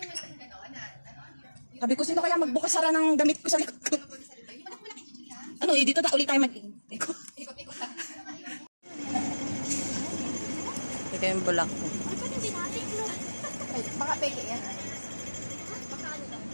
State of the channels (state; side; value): inverted; both; correlation -1.00